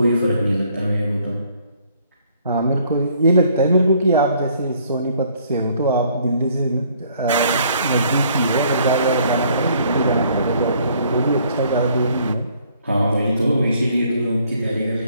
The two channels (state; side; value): inverted; both; correlation -0.63